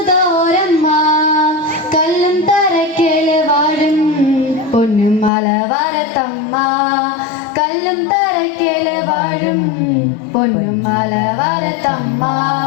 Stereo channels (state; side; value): drops out; right; at 5.3 s